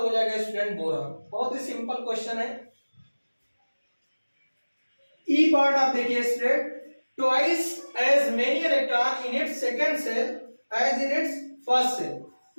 जाएगा स्टूडेंट बोरॉन। बहुत ही सिंपल क्वेश्चन है। ई पार्ट आप देखिए student, twice as many electron in its second shell as in its first shell.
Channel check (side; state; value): both; inverted; correlation -1.00